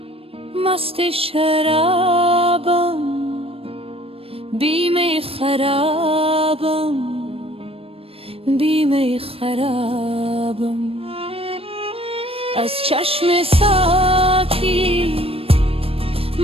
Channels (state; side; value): late; left; 0.28 ms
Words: مست شرابم، بی خرابم، بی خرابم. از چشم ساقی